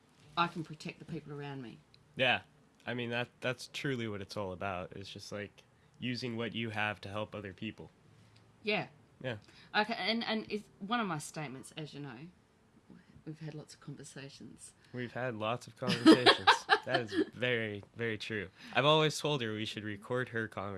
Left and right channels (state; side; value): identical; both; correlation 1.00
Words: I can protect the people around me. Yeah. I mean, that's truly what it's all about. It's just like using what you have to help other people. Yeah. Yeah. Okay, and it's one of my statements, as you know, we've had lots of conversations. We've had lots of conversations. That is very, very true. I've always told her we should record her